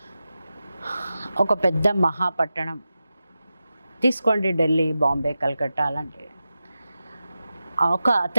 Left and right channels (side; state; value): both; inverted; correlation -0.92